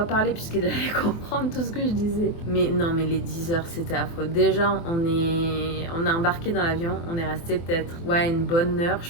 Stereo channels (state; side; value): late; right; 24 ms